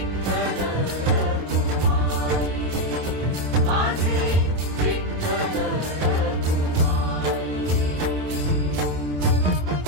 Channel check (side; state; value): left; late; 27 ms